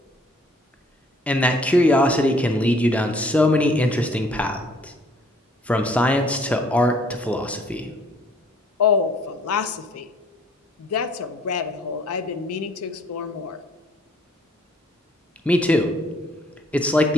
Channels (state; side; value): normal; both; correlation 0.60